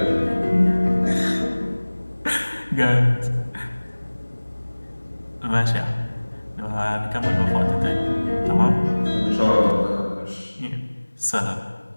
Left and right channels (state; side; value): inverted; both; correlation -1.00